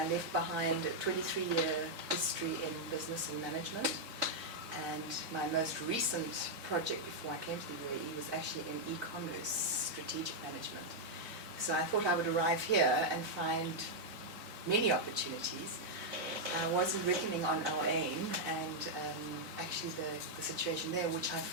left behind a 23-year history in business and management. And my most recent project before I came to the UAE was actually in e-commerce strategic management. So I thought I would arrive here and find many opportunities. I wasn't reckoning on our aim and actually the situation there, which I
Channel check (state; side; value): late; left; 4.1 ms